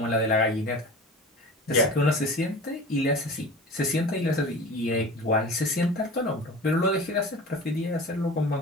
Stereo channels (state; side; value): normal; both; correlation 0.36